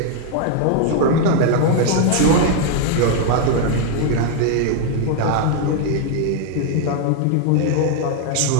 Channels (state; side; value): different; both; correlation 0.00